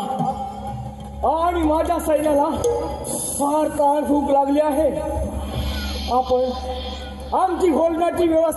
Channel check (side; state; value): both; identical; correlation 1.00